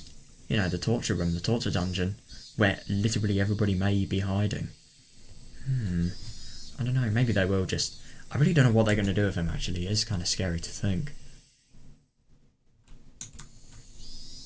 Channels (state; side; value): identical; both; correlation 1.00